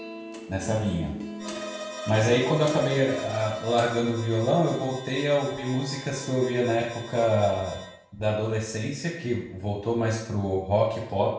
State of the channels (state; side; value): identical; both; correlation 1.00